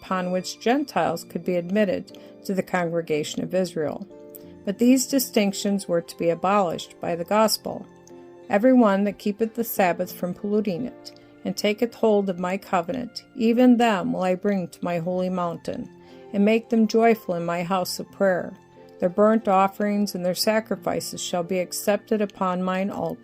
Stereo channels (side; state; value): both; identical; correlation 1.00